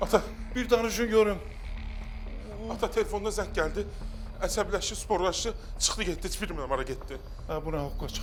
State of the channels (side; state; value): both; identical; correlation 1.00